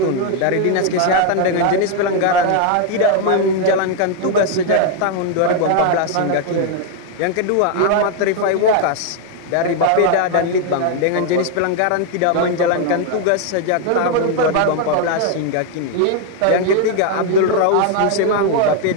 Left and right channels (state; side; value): different; both; correlation 0.01